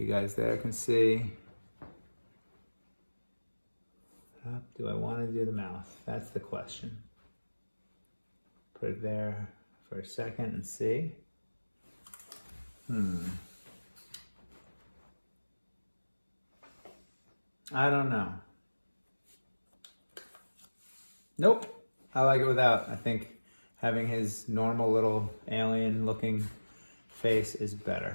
guys there can see. Do I want to do the mouth? That's the question. Put it there for a second and see. I don't know. Nope. I like it without. I think having his normal little alien looking face is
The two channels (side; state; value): both; inverted; correlation -1.00